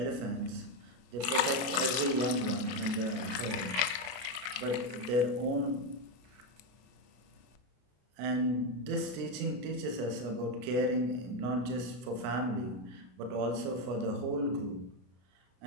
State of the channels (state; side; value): late; left; 32 ms